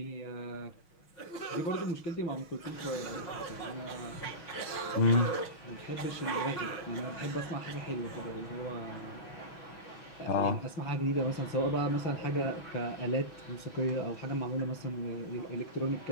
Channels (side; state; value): right; late; 6.2 ms